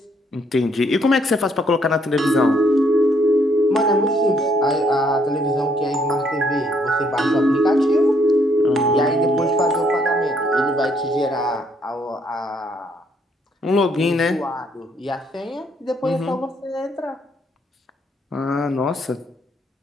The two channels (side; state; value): both; normal; correlation 0.69